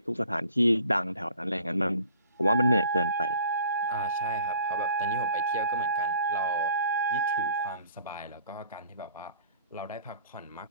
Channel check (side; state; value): both; inverted; correlation -0.52